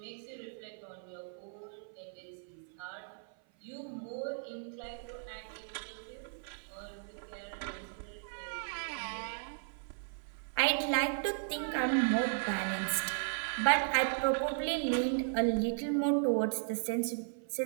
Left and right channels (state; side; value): silent; left; 54 dB below the other